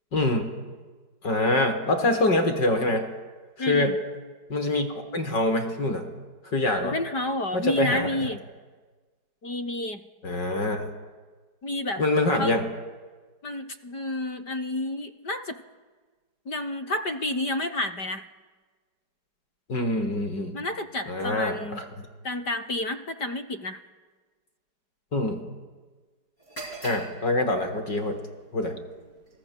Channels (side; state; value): right; late; 5.1 ms